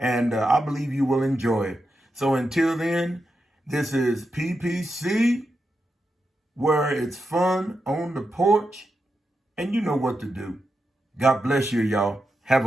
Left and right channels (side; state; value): both; normal; correlation 0.87